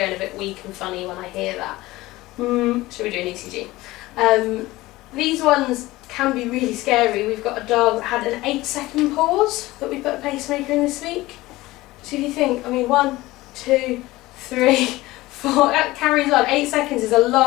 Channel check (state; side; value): quieter; right; 18.8 dB